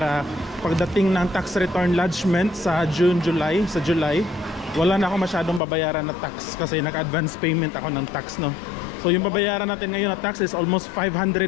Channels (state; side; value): drops out; right; at 5.6 s